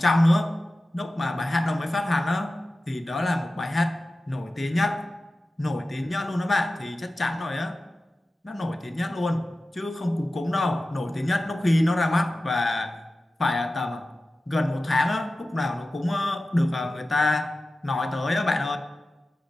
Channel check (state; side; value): normal; both; correlation 0.95